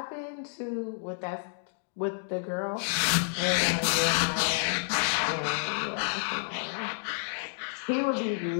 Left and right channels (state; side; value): silent; right; digital silence